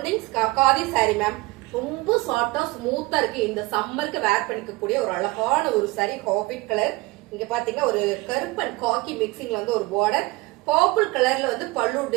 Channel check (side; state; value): left; quieter; 22.3 dB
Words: khadi sorry ma'am. ரொம்ப சாஃப்டா ஸ்மூத்தா இருக்கு. இந்த சம்மருக்கு வேர் பண்ணிக்கக்கூடிய ஒரு அழகான ஒரு சாரி. Habit colour. இங்க பாத்தீங்கன்னா ஒரு கருப்பன் காக்கி மிக்சிங்ல வந்து ஒரு பார்டர். பர்பிள் கலர்ல வந்து பல்லு